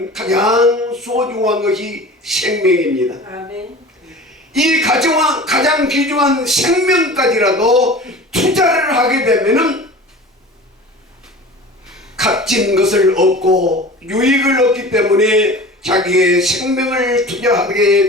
가장 소중한 것이 생명입니다. 아멘. 이 가장 귀중한 생명까지라도 투자를 하게 되면은 값진 것을 얻고 유익을 얻기 때문에 자기의 생명을 투자하게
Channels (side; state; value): both; normal; correlation 0.38